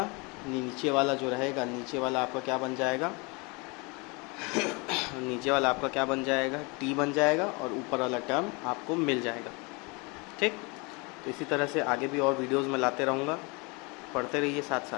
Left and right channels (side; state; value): right; quieter; 29.0 dB